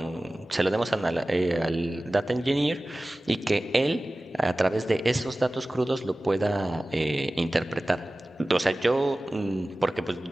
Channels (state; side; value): normal; both; correlation 0.97